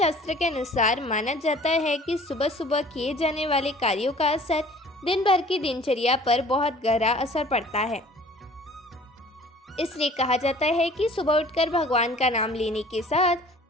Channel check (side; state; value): both; normal; correlation 0.50